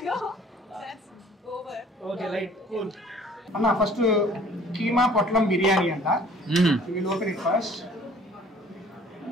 right cool. అన్న ఫస్ట్ కీమా పొట్లం బిర్యానీ అంట. Will open it first.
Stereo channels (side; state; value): both; normal; correlation 0.52